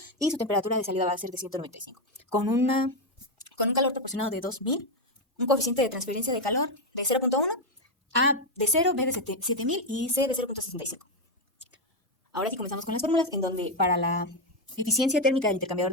y su temperatura de salida va a ser de 195. Con un calor proporcionado de 2000, un coeficiente de transferencia de calor de 0.1, A de 0, B de 7000 y C de 0.65. Ahora sí comenzamos con las fórmulas, en donde para la eficiencia térmica del intercambiador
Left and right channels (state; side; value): normal; both; correlation 0.05